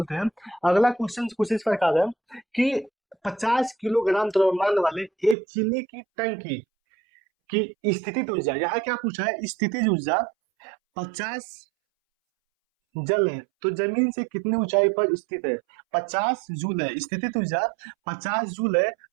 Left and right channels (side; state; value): left; drops out; at 5.4 s